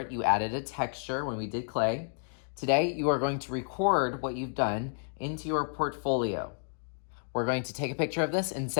You added a texture when we did clay. Today, you are going to record what you've done into your portfolio. We're going to take a picture of this and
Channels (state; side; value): silent; right; digital silence